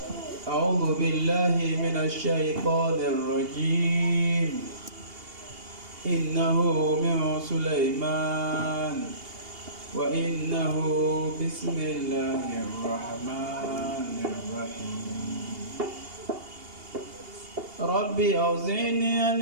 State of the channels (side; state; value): left; late; 2.8 ms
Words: أعوذ بالله من الشيطان الرجيم. إنه من سليمان وإنه بسم الله الرحمن الرحيم. ربي أوزعني أن